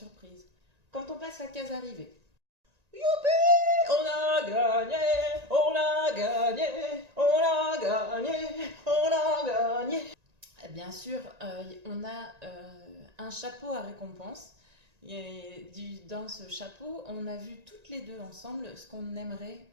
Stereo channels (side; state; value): left; late; 1.9 ms